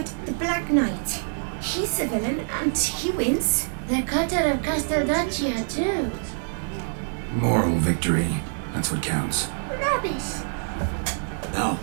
the Black Knight, he's a villain and he wins. The cutter of Casteldaccia too. Moral victory. That's what counts. Rubbish. Now,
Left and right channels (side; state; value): left; silent; digital silence